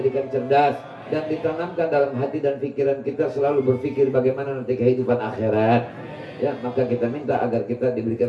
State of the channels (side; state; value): both; identical; correlation 1.00